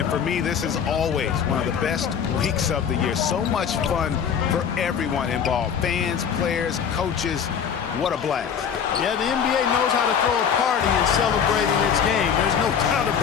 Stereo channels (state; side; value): quieter; right; 7.5 dB